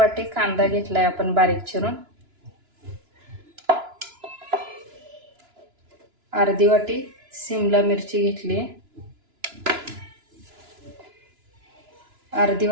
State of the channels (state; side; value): late; left; 2.9 ms